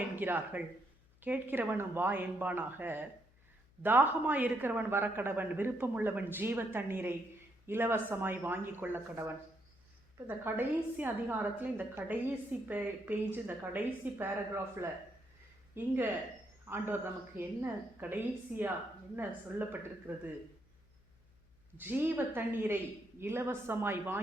என்கிறார்கள், கேட்கிறவனும் வா என்பானாக. தாகமாய் இருக்கிறவன் வரக்கடவன், விருப்பமுள்ளவன் ஜீவ தண்ணீரை இலவசமாய் வாங்கி கொள்ள கடவன். இப்போ இந்த கடைசி அதிகாரத்தில், இந்த கடைசி பேஜ், இந்த கடைசி பேராகிராஃபில் இங்கே ஆண்டவர் நமக்கு என்ன கடைசியாக என்ன சொல்லப்பட்டிருக்கிறது? ஜீவ தண்ணீரை இலவசமாய்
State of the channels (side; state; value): left; noise; hum, 29 dB below the sound